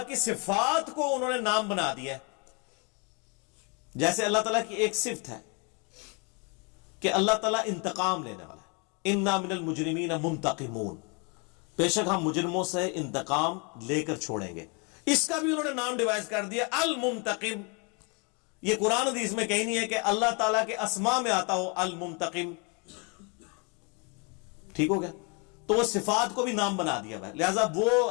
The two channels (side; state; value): right; quieter; 33.5 dB